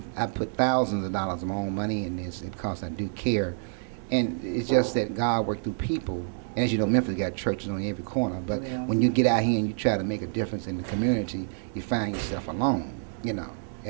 put thousands of dollars of my own money in this because I do care, and it's just that God worked through people. And as you know, Memphis got churches on every corner, but when you get out here and you try to make a difference in the community, you find yourself alone. You know,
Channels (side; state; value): left; silent; digital silence